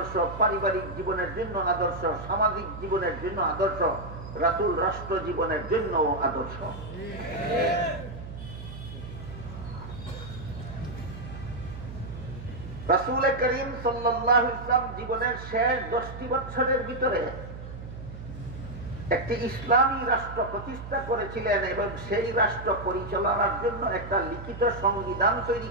পারিবারিক জীবনের জন্য আদর্শ, সামাজিক জীবনের জন্য আদর্শ, রাসূল রাষ্ট্র জীবনের জন্য আদর্শ। রাসূল করিম সাল্লাল্লাহু আলাইহি ওয়াসাল্লাম জীবনের শেষ 10টি বছরের ভিতরে একটি ইসলামী রাষ্ট্র প্রতিষ্ঠা করেছিলেন এবং সেই রাষ্ট্র পরিচালনার জন্য একটা লিখিত সংবিধান তৈরি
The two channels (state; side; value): noise; right; hum, 11 dB below the sound